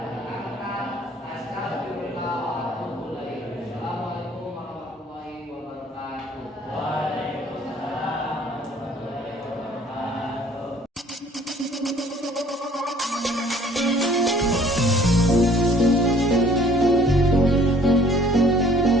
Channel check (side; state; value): both; normal; correlation 0.56